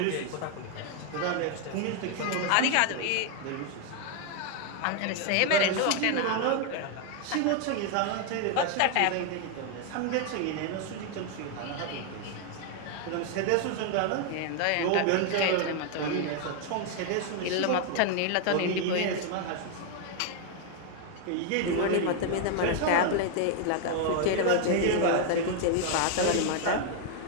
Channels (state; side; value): different; both; correlation 0.00